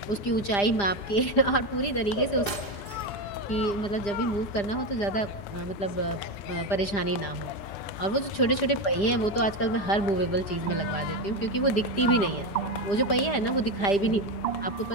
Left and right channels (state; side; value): late; right; 5.0 ms